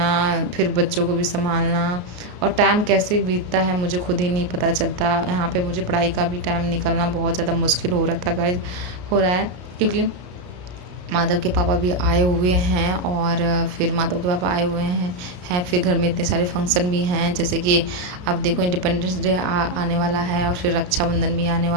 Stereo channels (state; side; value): late; left; 33 ms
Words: फिर बच्चों को भी संभालना, और टाइम कैसे बीतता है मुझे खुद ही नहीं पता चलता। यहाँ पे मुझे पढ़ाई का भी टाइम निकलना बहुत ज़्यादा मुश्किल हो रहा था गाइस, हो रहा है, क्योंकि माधव के पापा भी आए हुए हैं, और फिर माधव के पापा आए हुए हैं फिर घर में इतने सारे फंक्शन भी हैं, जैसे कि अब देखो इंडिपेंडेंस डे आने वाला है, और फिर रक्षाबंधन भी आने